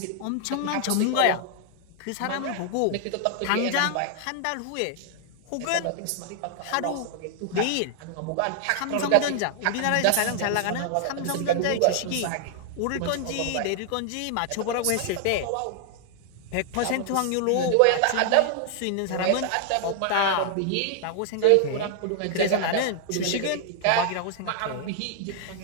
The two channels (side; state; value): both; different; correlation 0.00